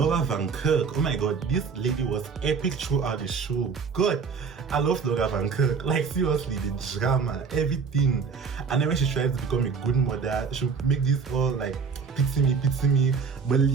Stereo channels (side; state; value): left; quieter; 5.5 dB